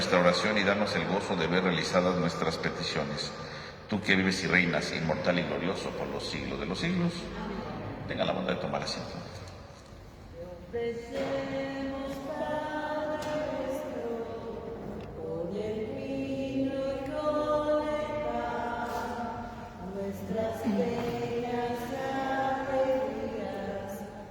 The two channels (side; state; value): both; identical; correlation 1.00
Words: oración y danos el gozo de ver realizadas nuestras peticiones. Tú que vives y reinas, inmortal y glorioso por los siglos de los siglos, tenga la bondad de tomar asiento. Ofrecemos, Padre nuestro, con el vino y con el pan, nuestras penas y alegrías,